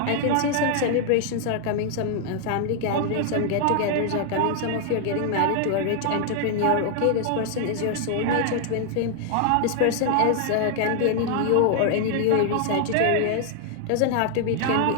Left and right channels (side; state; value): both; different; correlation 0.00